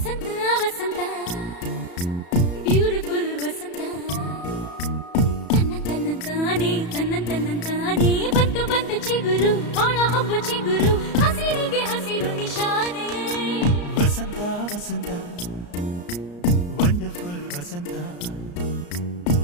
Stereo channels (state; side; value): late; right; 34 ms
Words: ವಸಂತ beautiful ವಸಂತ ತನ್ನಂತಾನೆ ಬಂತು ಬಂತು ಚಿಗುರು ಒಳ ಹಬ್ಬ ಚಿಗುರು ಹಸಿರಿಗೆ ಹಸಿರು ನಿಶಾನೆ ವಸಂತ ವಸಂತ ವಂಡರ್ಫುಲ್ ವಸಂತ